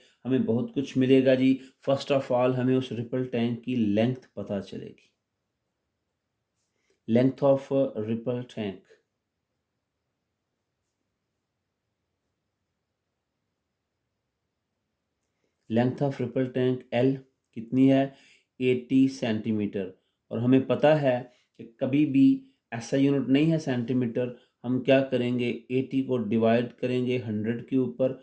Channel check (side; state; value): both; identical; correlation 1.00